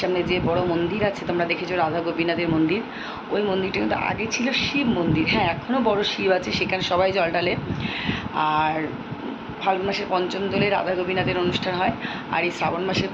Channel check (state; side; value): identical; both; correlation 1.00